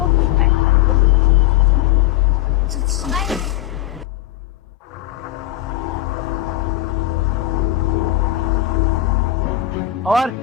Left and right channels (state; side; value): quieter; right; 13.6 dB